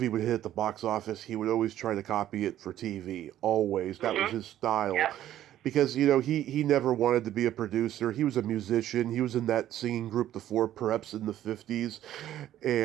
would hit at the box office, he would always try to copy it for TV. Always. That was his style. Yep. Because, he never wanted to be a producer. He was a musician. He was in that singing group, the Four Preps, in the 50s.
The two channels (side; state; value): left; quieter; 12.4 dB